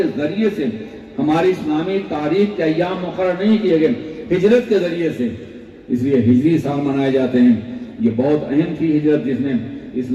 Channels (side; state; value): both; identical; correlation 1.00